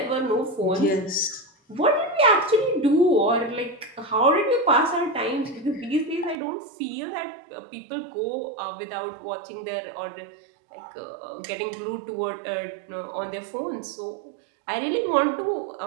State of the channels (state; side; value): drops out; left; at 6.4 s